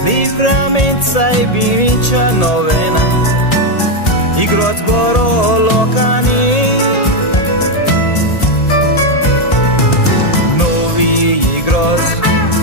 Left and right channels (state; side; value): late; right; 1.8 ms